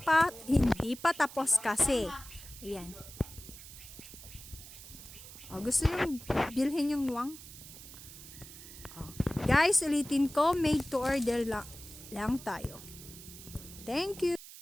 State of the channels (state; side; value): noise; right; hiss, 15 dB below the sound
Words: pa tapos kasi. Ayan. Oh, gusto yung bilhin yung luwang? Oh. Guys, ulitin ko, made to order lang tayo. Thank you.